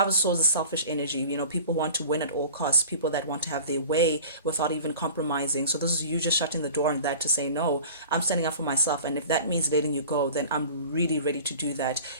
of Swords is selfish energy. People want to win at all costs, people that want to have their way without even compromising. So this is you just shutting the door on that to say, no, I'm standing up for myself. And if that means letting you go, then I'm really ready to do that.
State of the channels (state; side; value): inverted; both; correlation -0.41